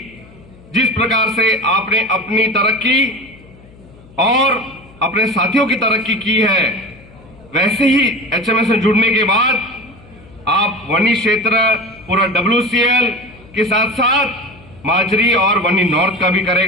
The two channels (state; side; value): noise; left; hum, 24 dB below the sound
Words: जिस प्रकार से आपने अपनी तरक्की और अपने साथियों की तरक्की की है, वैसे ही एचएमएस से जुड़ने के बाद आप वनी क्षेत्र पूरा WCL के साथ साथ माजरी और वनी नॉर्थ का भी